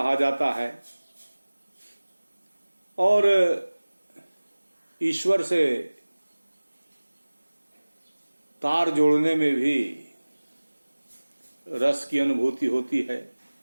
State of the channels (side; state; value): both; inverted; correlation -1.00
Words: जाता है। और ईश्वर से तार जोड़ने में भी रस की अनुभूति होती है,